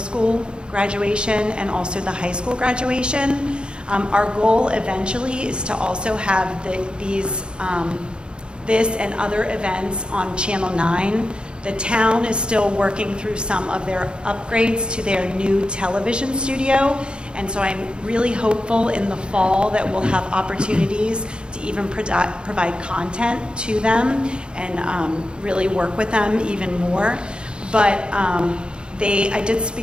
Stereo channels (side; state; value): left; late; 0.052 ms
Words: graduation and also the high school graduation. Our goal eventually is to also have this and other events on Channel 9. The town is still working through some of their upgrades to their new television studio, and so I'm really hopeful in the fall that we'll have opportunities to even provide content to them and really work with them even more. But I did